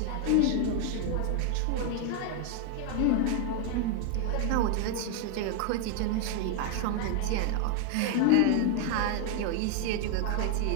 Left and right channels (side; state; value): both; different; correlation 0.00